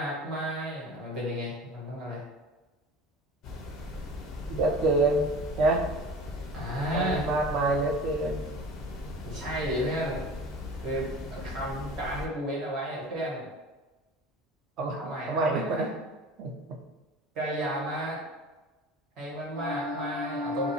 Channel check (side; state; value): both; normal; correlation 0.39